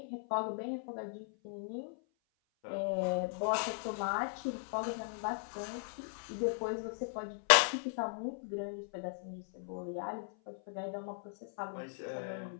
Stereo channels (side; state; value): right; silent; 53 dB below the other